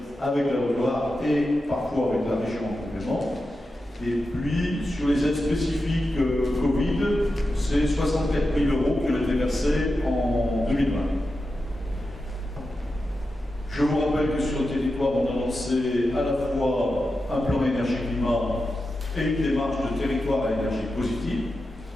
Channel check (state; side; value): normal; both; correlation 0.90